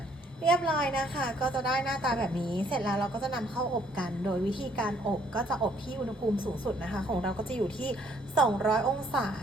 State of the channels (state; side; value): normal; both; correlation 0.65